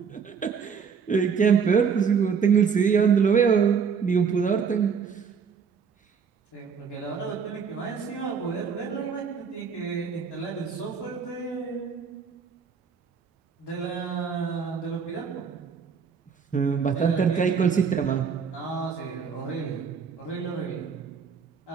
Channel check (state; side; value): quieter; left; 6.3 dB